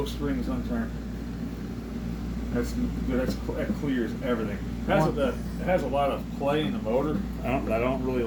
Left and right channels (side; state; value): both; identical; correlation 1.00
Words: strings unturned. That clears everything. It has a lot of play in the motor. I don't really